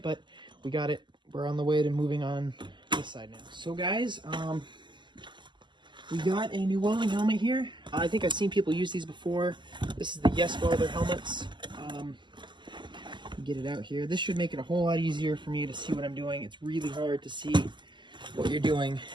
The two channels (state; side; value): late; left; 0.22 ms